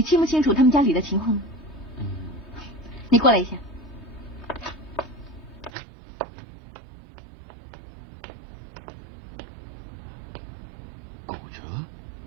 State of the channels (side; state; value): left; drops out; at 5.7 s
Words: 清不清楚他们家里的情况？你过来一下。骨折？